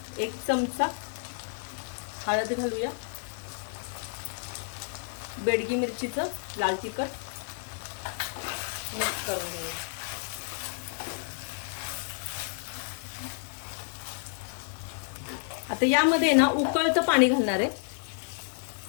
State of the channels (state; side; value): silent; right; digital silence